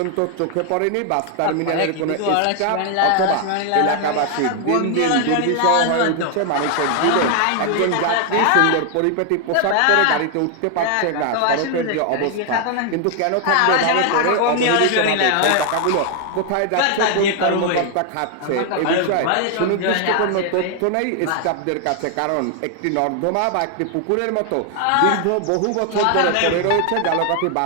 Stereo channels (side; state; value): both; different; correlation 0.00